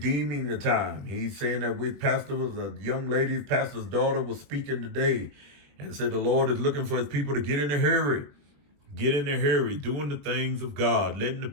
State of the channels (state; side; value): late; left; 21 ms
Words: the time. He's saying that a young lady, pastor's daughter, was speaking today and said the Lord is looking for his people to get in a hurry. Get in a hurry, doing the things of God, letting the